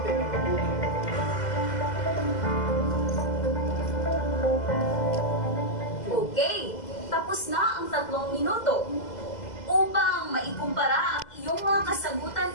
Okay, tapos na ang 3 minuto. Upang maikumpara ang iyong mga kasagutan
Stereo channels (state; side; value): late; right; 2.0 ms